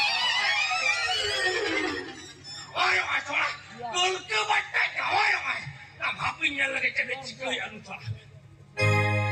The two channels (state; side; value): identical; both; correlation 1.00